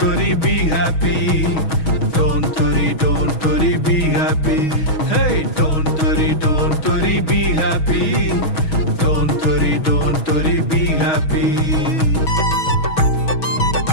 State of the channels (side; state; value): right; late; 6.3 ms